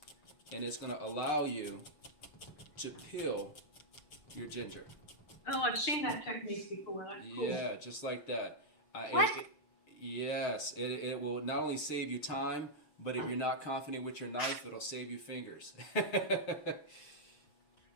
And it's going to allow you to peel your ginger. Oh, I've seen that technique before. That's cool. Yeah, just like that. What? Yes, it will not only save you time, but if you're not confident with your knife, it'll save you fingers.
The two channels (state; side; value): late; right; 6.6 ms